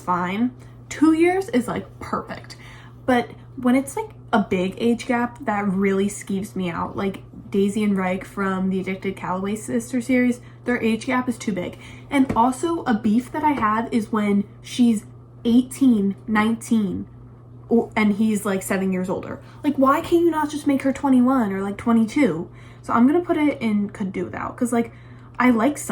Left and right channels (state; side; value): identical; both; correlation 1.00